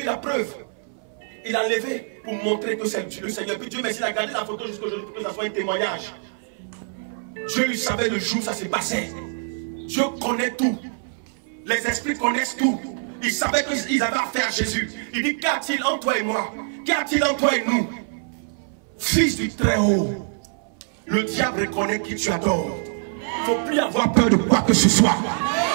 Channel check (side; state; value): left; silent; 60 dB below the other